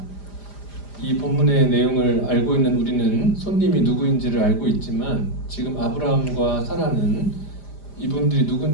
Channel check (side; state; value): right; late; 5.0 ms